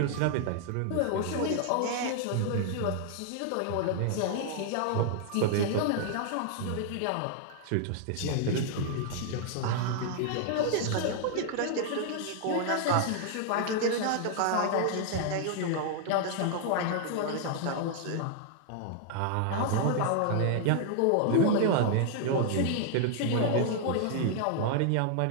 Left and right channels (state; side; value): different; both; correlation 0.00